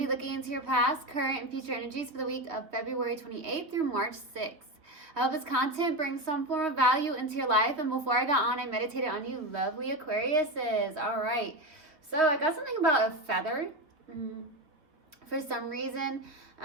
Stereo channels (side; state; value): left; late; 3.2 ms